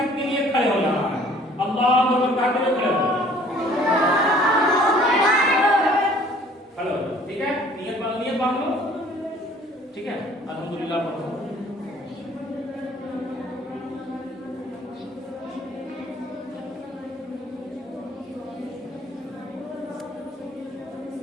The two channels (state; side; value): normal; both; correlation 0.55